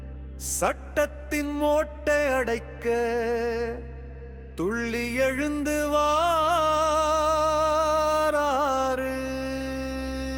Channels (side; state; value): both; identical; correlation 1.00